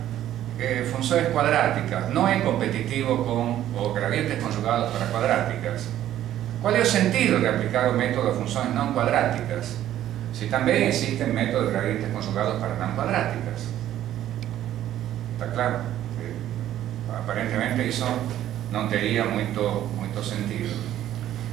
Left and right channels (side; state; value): left; quieter; 12.3 dB